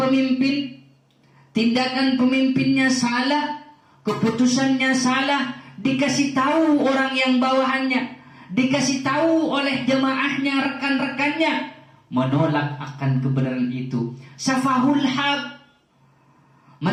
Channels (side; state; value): both; identical; correlation 1.00